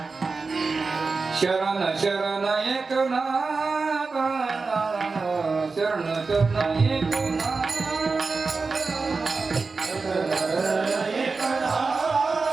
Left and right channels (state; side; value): quieter; left; 4.2 dB